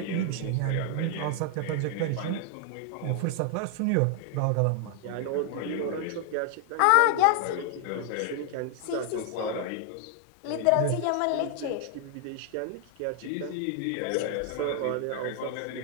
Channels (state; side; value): different; both; correlation 0.00